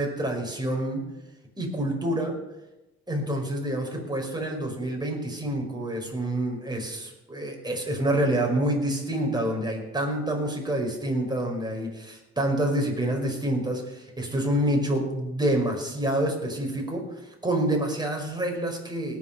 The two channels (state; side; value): normal; both; correlation 0.49